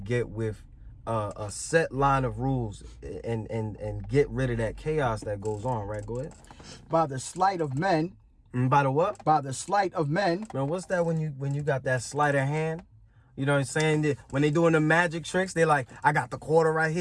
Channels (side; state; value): both; identical; correlation 1.00